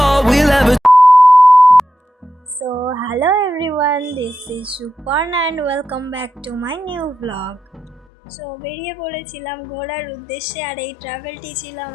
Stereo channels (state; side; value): drops out; right; at 8.1 s